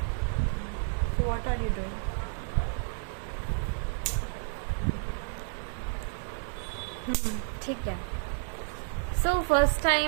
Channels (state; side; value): silent; left; digital silence